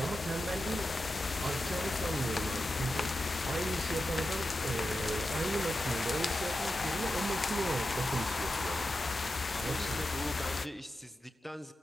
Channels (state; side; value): normal; both; correlation 0.91